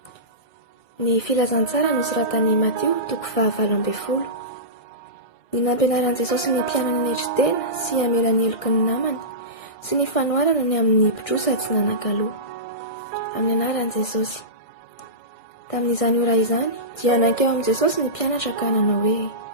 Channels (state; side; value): late; right; 2.0 ms